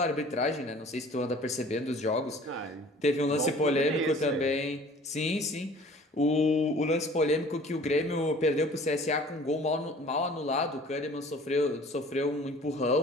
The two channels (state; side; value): normal; both; correlation 0.49